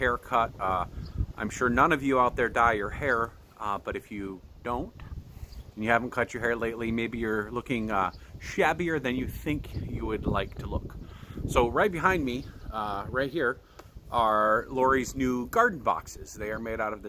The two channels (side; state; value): both; identical; correlation 1.00